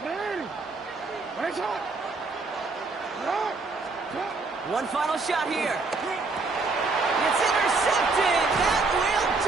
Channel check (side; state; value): left; quieter; 3.8 dB